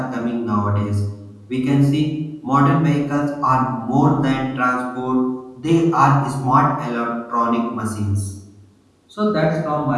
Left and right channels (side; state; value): both; identical; correlation 1.00